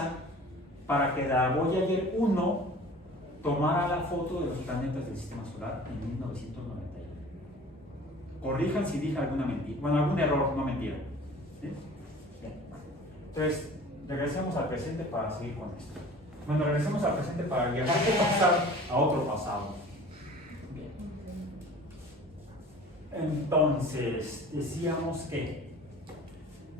para que la Voyager 1 tomara la foto de los planetas del Sistema Solar en 1991. Corrijan si dije alguna mentira, bueno, algún error, no mentira. ¿Sí? Bien. Entonces, regresemos al presente para seguir con esto. Bueno, regresemos al presente para viajar de pasar a otro pasado. Bien. Entonces, decíamos que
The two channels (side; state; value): both; normal; correlation 0.44